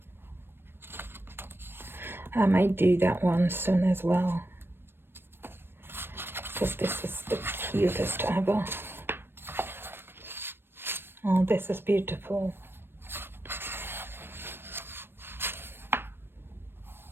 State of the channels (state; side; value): late; left; 0.10 ms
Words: I might do that one soon as well, because this is the cutest ever. Oh, this is beautiful.